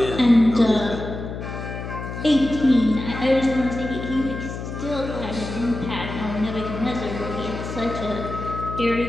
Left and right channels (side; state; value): left; noise; hum, 7 dB below the sound